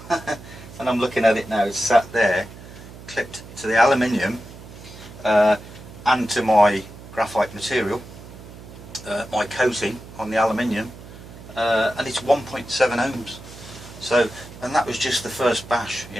And I'm looking at it now. It's sat there, clipped to the aluminium and to my graphite material, my coating on the aluminium, and it's 1.7 ohms. So, and that was just the first bash.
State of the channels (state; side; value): noise; right; hum, 16 dB below the sound